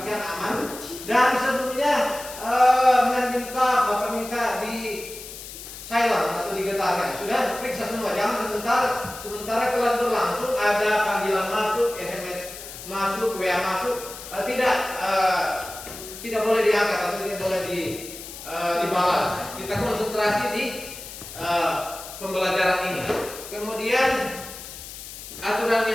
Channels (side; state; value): left; noise; hiss, 12 dB below the sound